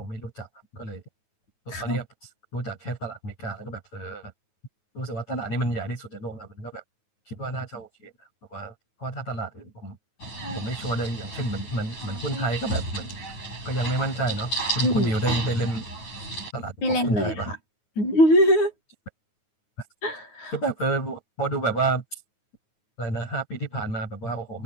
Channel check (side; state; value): right; late; 9.4 ms